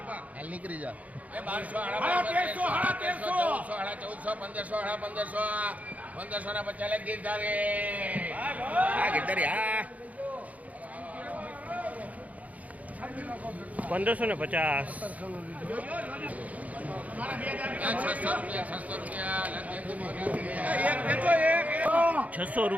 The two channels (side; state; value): left; late; 0.072 ms